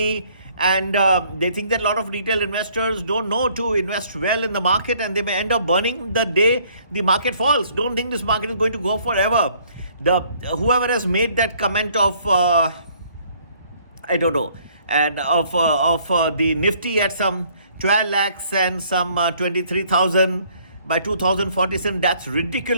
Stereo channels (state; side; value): inverted; both; correlation -0.61